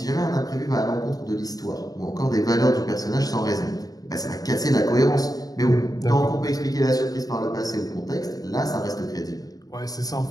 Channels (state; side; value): late; right; 0.18 ms